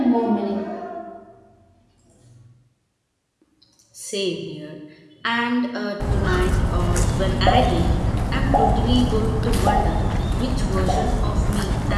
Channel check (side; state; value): both; identical; correlation 1.00